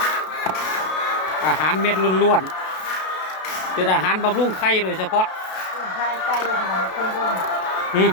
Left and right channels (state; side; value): late; right; 32 ms